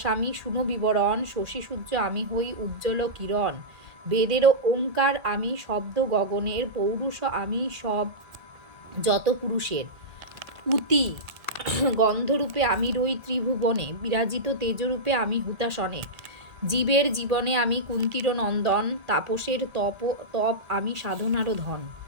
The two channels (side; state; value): left; late; 1.8 ms